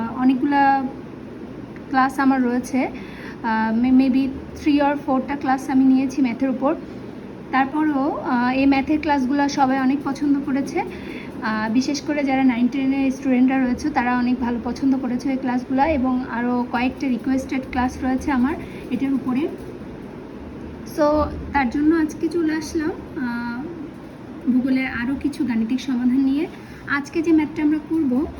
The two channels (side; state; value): both; identical; correlation 1.00